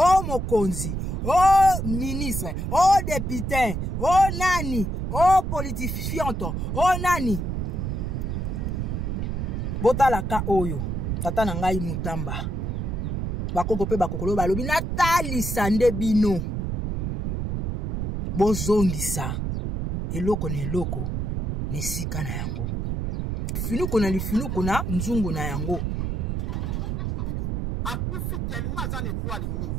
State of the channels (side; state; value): right; noise; rumble, 2 dB below the sound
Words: mokonzi o ministre o député o nani o politifianto o nani botalaka oyo tata na ngai mutamba bakoko pe bakokolo balobi natalisa nde bino bozongisa eloko na eloko ne sika na yango finuko na lifinuko na nzungu na yango akufi tellement za étoile